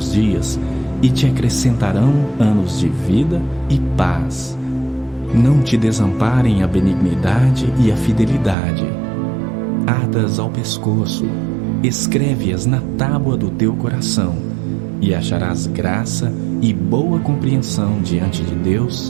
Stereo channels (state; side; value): drops out; left; at 8.6 s